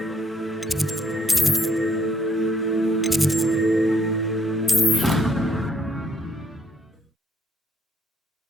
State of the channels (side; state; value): both; normal; correlation 0.69